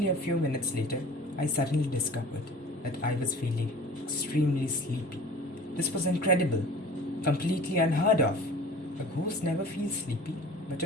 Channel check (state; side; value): normal; both; correlation 0.43